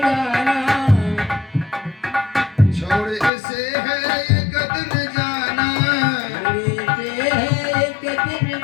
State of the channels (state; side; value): drops out; right; at 3.3 s